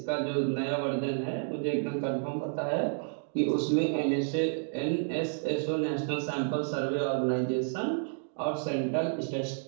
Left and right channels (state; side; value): silent; left; digital silence